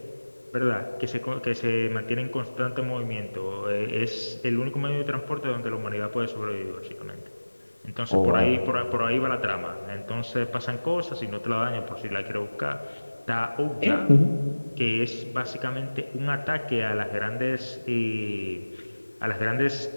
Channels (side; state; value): both; inverted; correlation -1.00